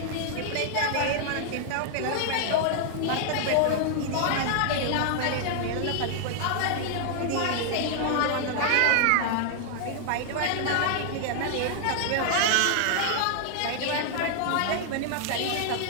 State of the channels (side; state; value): both; different; correlation 0.00